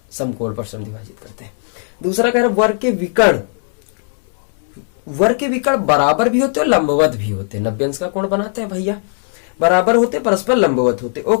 समकोण पर समद्विभाजित करते हैं। दूसरा कह रहा है वर्ग के विकर्ण, वर्ग के विकर्ण बराबर भी होते हैं और लंबवत भी होते हैं, 90 अंश का कोण बनाते हैं भैया, बराबर होते परस्पर लंबवत होते,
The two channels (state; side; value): silent; right; 57 dB below the other